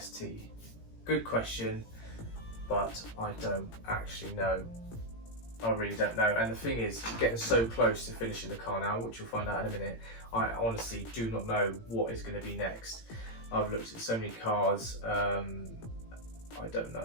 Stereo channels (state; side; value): late; right; 18 ms